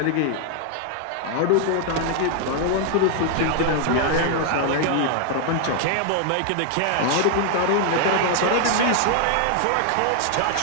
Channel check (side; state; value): both; different; correlation 0.00